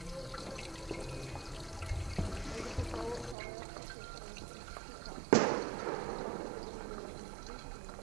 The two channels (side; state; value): left; drops out; at 3.4 s